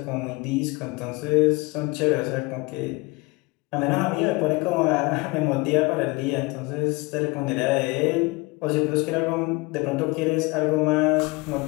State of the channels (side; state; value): right; quieter; 25.1 dB